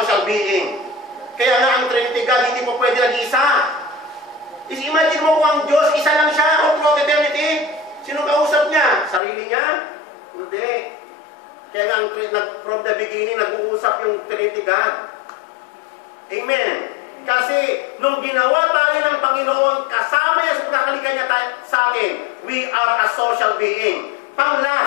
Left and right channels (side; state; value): right; drops out; at 9.2 s